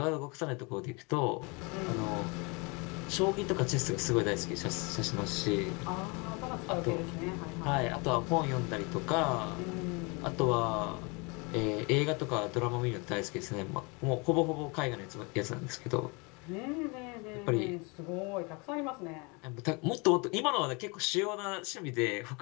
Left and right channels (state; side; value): quieter; right; 29.7 dB